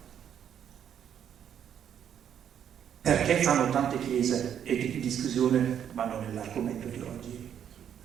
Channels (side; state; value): left; quieter; 9.1 dB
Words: Perché fanno tante chiese? È di discussione, ma non è l'argomento di oggi.